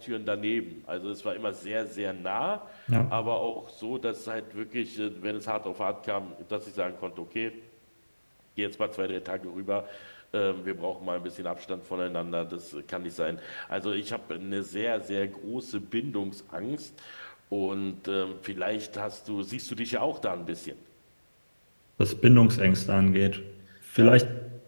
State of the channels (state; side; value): inverted; both; correlation -1.00